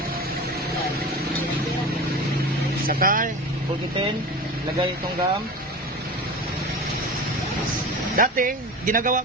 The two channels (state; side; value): normal; both; correlation 0.31